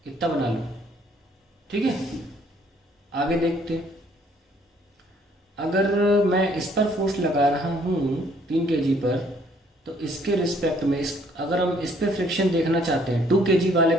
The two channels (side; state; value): both; normal; correlation 0.63